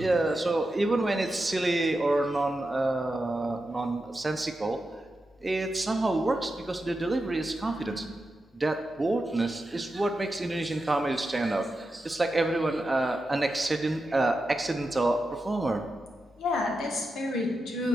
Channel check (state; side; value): normal; both; correlation 0.89